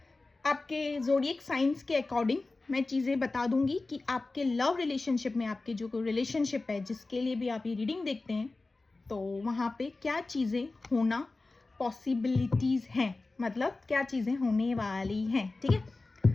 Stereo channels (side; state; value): right; quieter; 3.4 dB